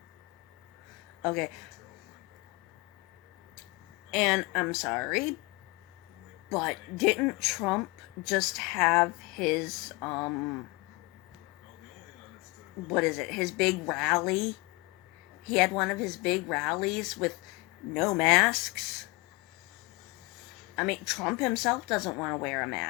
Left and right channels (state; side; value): quieter; right; 25.0 dB